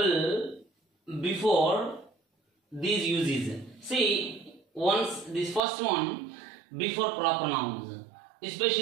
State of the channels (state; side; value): drops out; left; at 5.6 s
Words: before these uses. See, once this first one, before proper nouns,